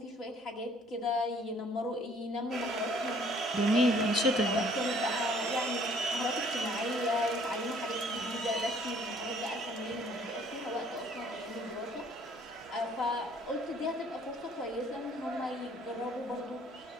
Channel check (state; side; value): normal; both; correlation 0.58